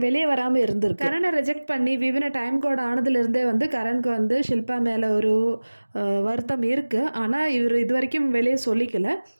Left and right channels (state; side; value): inverted; both; correlation -1.00